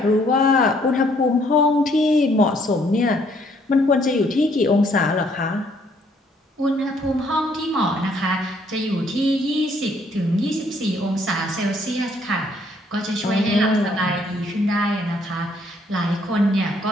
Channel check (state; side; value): normal; both; correlation 0.66